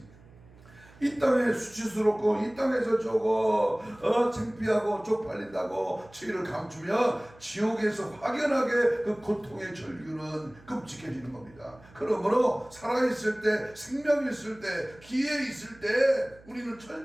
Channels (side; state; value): right; noise; hum, 24 dB below the sound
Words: 이 땅에 수치스럽고 이 땅에서 창피하고 쪽팔린다고 죄를 감추며 지옥에서 확연하게 그 고통의 절규는 끔찍해지는 겁니다. 그러므로 살아있을 때, 생명이 있을 때, 기회 있을 때 우리는